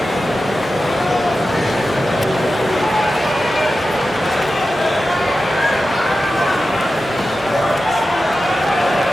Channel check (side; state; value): both; normal; correlation 0.93